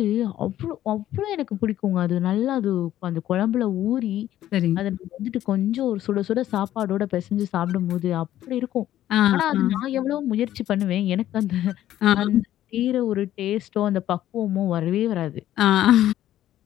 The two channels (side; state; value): right; quieter; 12.8 dB